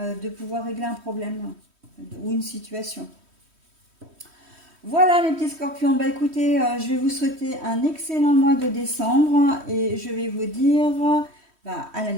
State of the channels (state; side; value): late; left; 3.1 ms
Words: de pouvoir régler un problème ou une situation. Voilà mes petits scorpions, bah écoutez, je vais vous souhaiter un excellent mois de décembre et je vais vous dire bah, à